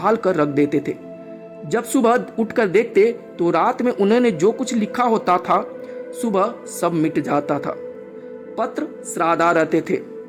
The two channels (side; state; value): both; identical; correlation 1.00